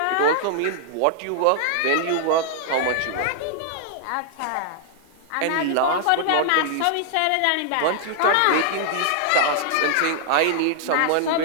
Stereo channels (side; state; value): both; different; correlation -0.01